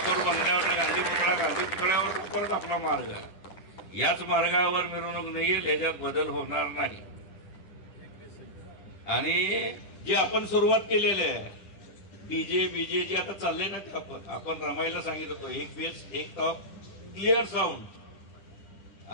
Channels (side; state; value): right; late; 10 ms